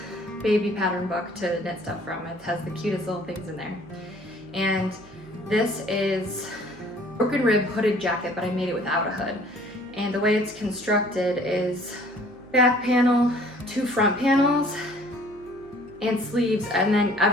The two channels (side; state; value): right; noise; hum, 23 dB below the sound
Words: baby pattern book to knit stuff from. It has the cutest little things in there. And this is broken rib hooded jacket, but I made it without a hood. And the way it's constructed is back panel, 2 front panels, and sleeves, and then